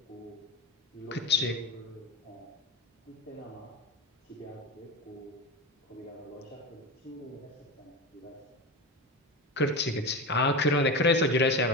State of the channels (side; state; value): both; normal; correlation 0.23